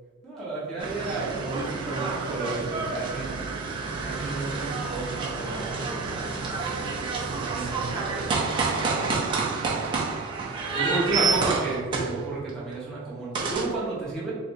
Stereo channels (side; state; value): left; quieter; 3.5 dB